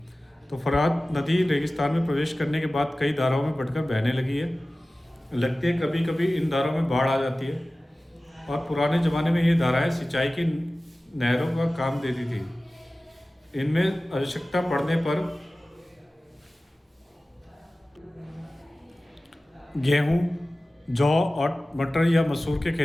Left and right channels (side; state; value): both; normal; correlation 0.97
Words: तो फरात नदी रेगिस्तान में प्रवेश करने के बाद कई धाराओं में बढ़कर बहने लगी है। लगती है कभी कभी इन धाराओं में बाढ़ आ जाती है, और पुराने ज़माने में ये धाराएं सिंचाई की नहरों का काम देती थी। इनमें आवश्यकता पड़ने पर गेहूं, जौ और मटर या मसूर के